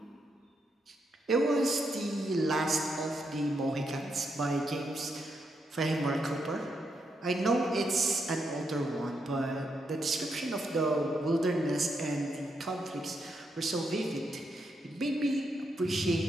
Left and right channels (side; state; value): both; normal; correlation 0.81